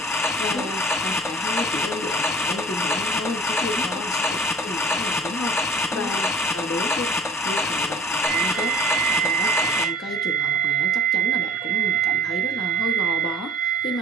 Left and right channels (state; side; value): normal; both; correlation 0.45